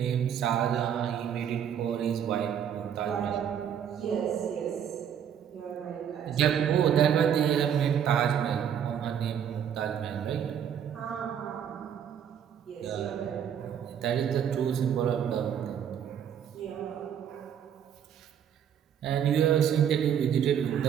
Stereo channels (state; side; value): quieter; left; 8.8 dB